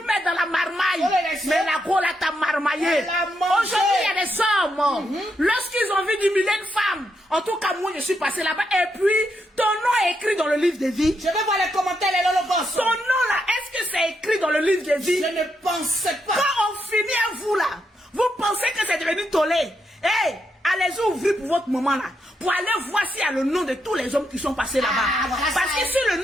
mettre dans la marmaille. Oh, les Mais la go là t'a marmaillé. Elle a mangé. Aujourd'hui, il y a des hommes. Lorsqu'ils ont envie d'humilier une femme, en tout cas, moi, je suis passé là-bas. Et puis, ton nom est écrit dans le livre de vie. Je vais voir les commentaires, les lolo boss. Ton nom là, est-ce que c'est écrit dans le livre de vie? Je ne pensais pas. Quand on finit à vous là, vous pensez que c'est devenu tollé. Hey, allez-y ouvrir pour votre moment là. Pour aller voir s'il y a le nom de tous les hommes qui sont passés là-bas. Ah, voilà Parce ça. que si le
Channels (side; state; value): both; normal; correlation 0.81